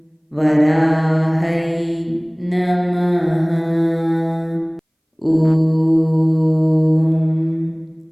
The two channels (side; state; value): both; identical; correlation 1.00